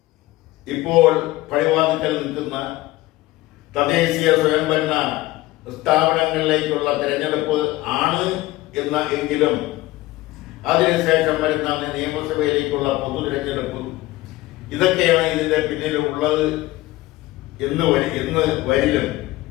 ഇപ്പോൾ പടിവാതിക്കൽ നിൽക്കുന്ന തദ്ദേശീയ സ്വയംഭരണ സ്ഥാപനങ്ങളിലേക്കുള്ള തിരഞ്ഞെടുപ്പ് ആണ് എങ്കിലും അതിനുശേഷം വരുന്ന നിയമസഭയിലേക്കുള്ള പൊതു തിരഞ്ഞെടുപ്പ്, ഇതൊക്കെയാണ് ഇതിന്റെ പിന്നിൽ ഉള്ളത് എന്ന് വരിലും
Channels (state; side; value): quieter; right; 18.2 dB